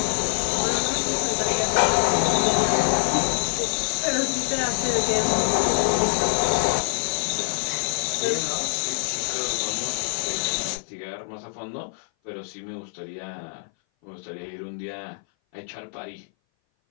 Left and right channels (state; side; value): silent; right; 58 dB below the other